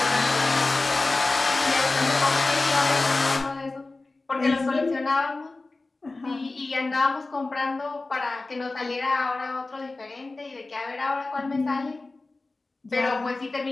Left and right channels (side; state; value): right; quieter; 3.3 dB